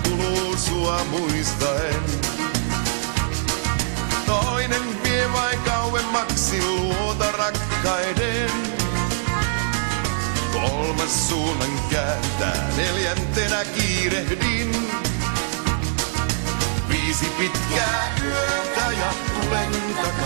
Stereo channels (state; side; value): silent; left; digital silence